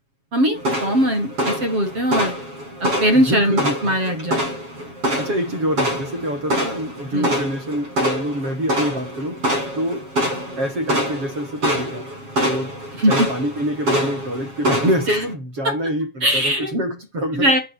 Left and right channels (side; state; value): left; late; 7.3 ms